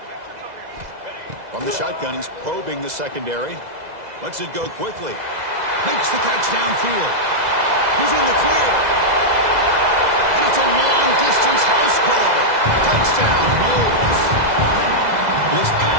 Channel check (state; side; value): late; left; 2.0 ms